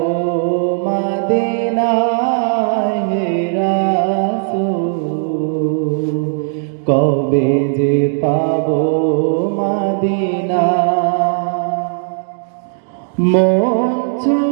মদিনায় হে রাসূল, কবে যে পাবো মদিনা। মন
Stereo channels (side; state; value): left; silent; 66 dB below the other